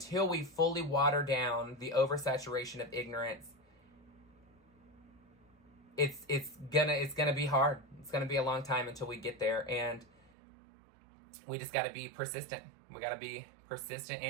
we fully water down the oversaturation of ignorance, it's gonna be hard. It's gonna be a long time until we get there, and we just got to be persistent. We got to be persistent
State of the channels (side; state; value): left; drops out; at 10.3 s